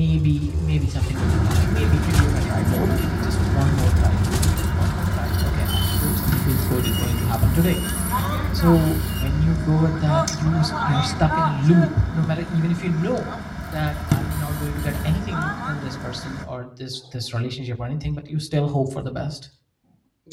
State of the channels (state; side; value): identical; both; correlation 1.00